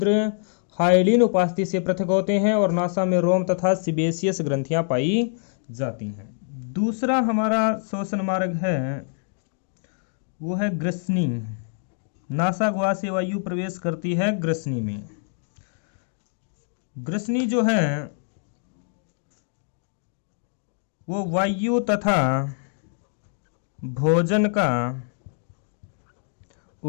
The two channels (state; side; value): silent; right; 62 dB below the other